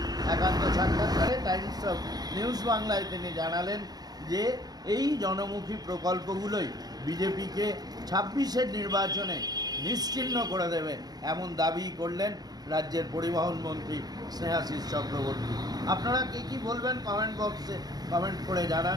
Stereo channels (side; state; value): left; late; 0.19 ms